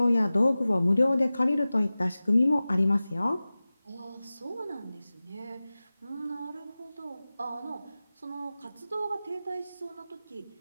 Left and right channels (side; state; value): both; inverted; correlation -0.97